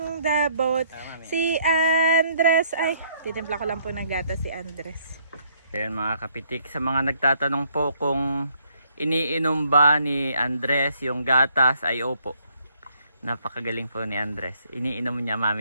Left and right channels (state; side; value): inverted; both; correlation -0.67